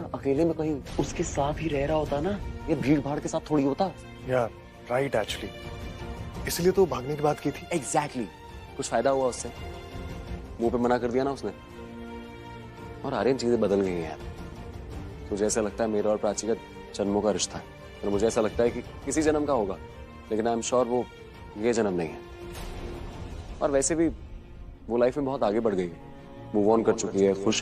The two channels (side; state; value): both; identical; correlation 1.00